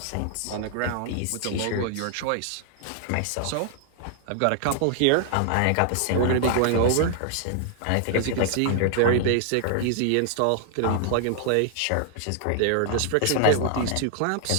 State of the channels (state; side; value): different; both; correlation 0.00